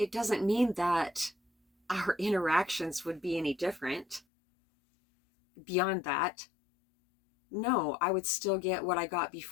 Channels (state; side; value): drops out; right; at 4.2 s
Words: doesn't mean that our interactions would be any different. Beyond that, no, I would still get what I got